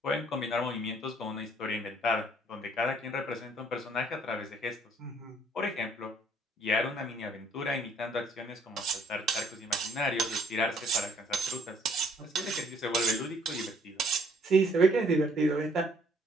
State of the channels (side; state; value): both; normal; correlation 0.62